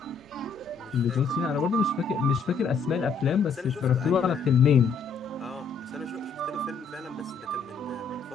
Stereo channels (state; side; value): quieter; right; 5.1 dB